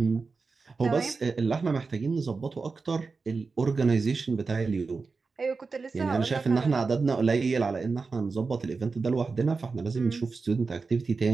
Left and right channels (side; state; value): left; quieter; 4.4 dB